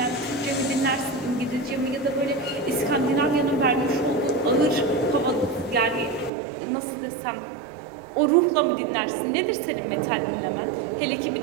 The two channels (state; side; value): drops out; left; at 6.3 s